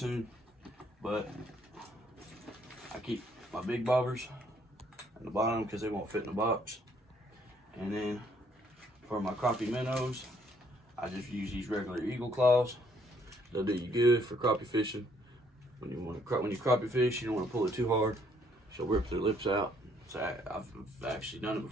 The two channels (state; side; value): normal; both; correlation 0.67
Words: But I keep my big bobbers in the bottom because they won't fit in the box. And then for my crappie minnows, I just use these regular eagle claws. They'll do you good for crappie fishing. When you crappie fish, you don't want to pull it too hard. She'll rip their lips out. So I've actually done it